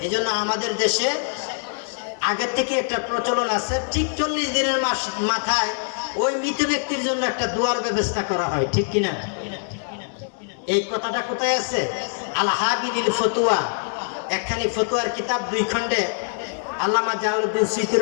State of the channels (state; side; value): silent; right; digital silence